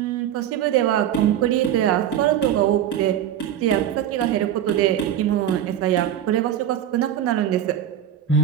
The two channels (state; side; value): quieter; left; 10.6 dB